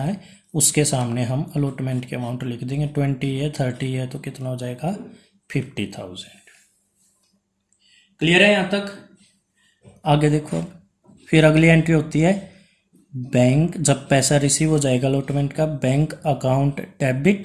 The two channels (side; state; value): both; identical; correlation 1.00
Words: है उसके सामने हम अलॉटमेंट के अमाउंट लिख देंगे। 20 है, 30 है, तो कितना हो जाएगा 50,000। क्लियर है यहाँ तक। आगे देखो, फिर अगली एंट्री होती है बैंक, जब पैसा रिसीव हो जाएगा अलॉटमेंट का, bank account